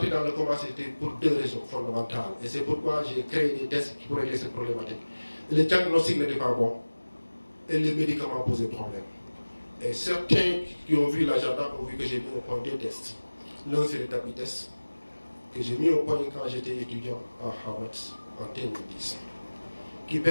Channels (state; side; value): inverted; both; correlation -1.00